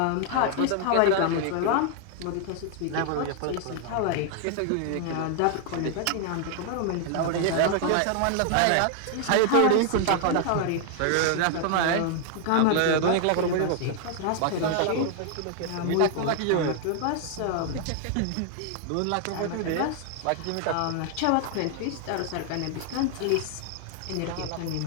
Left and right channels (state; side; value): different; both; correlation 0.00